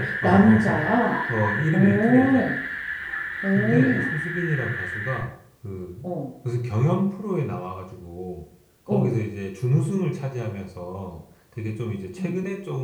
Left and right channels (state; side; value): identical; both; correlation 1.00